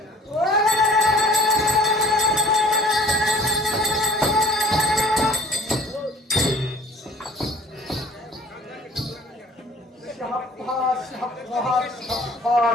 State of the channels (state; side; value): normal; both; correlation 0.50